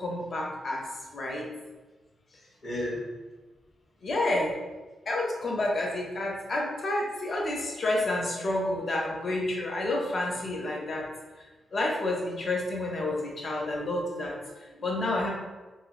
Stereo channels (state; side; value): normal; both; correlation 0.81